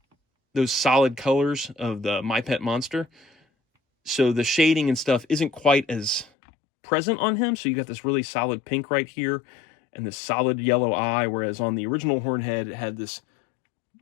those solid colors of the My Pet Monster. So the shading and stuff isn't quite as present on him. So you got this really solid pink right here and this solid yellow eye, whereas on the original Hornhead, it had this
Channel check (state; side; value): drops out; right; at 6.3 s